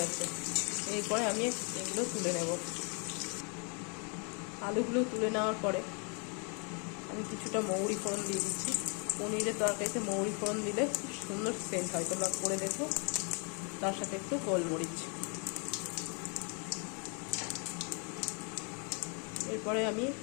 এরপরে আমি এগুলো তুলে নেব। আলুগুলো তুলে নেওয়ার পরে আমি কিছুটা মৌরি ফোড়ন দিয়ে দিচ্ছি। পনিরের তরকারিতে মৌরি ফোড়ন দিলে খুব সুন্দর সেন্ট হয়, তোমরা করে দেখো। তার সাথে একটু গোলমরিচ। এরপরে আমি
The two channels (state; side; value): quieter; right; 37.0 dB